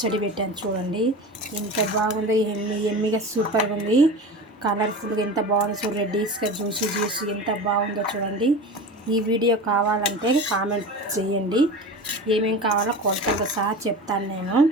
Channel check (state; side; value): normal; both; correlation 0.31